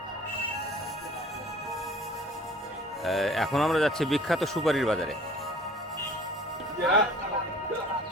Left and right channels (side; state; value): both; normal; correlation 0.49